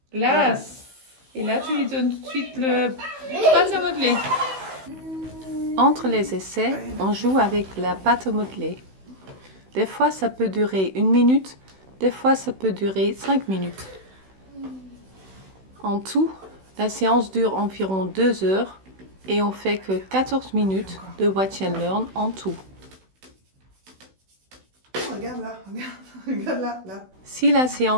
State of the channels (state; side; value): late; left; 16 ms